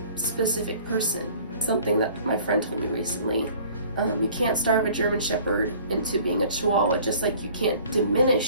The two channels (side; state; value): both; inverted; correlation -0.51